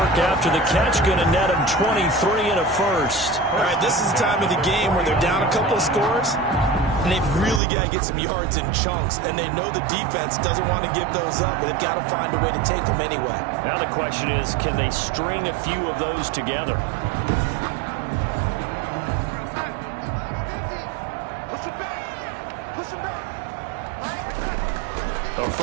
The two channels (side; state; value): left; drops out; at 7.6 s